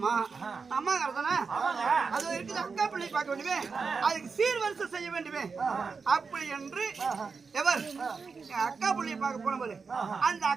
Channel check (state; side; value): quieter; left; 5.0 dB